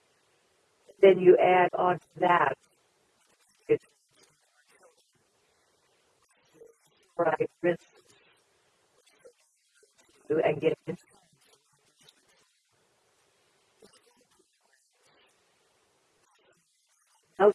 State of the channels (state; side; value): identical; both; correlation 1.00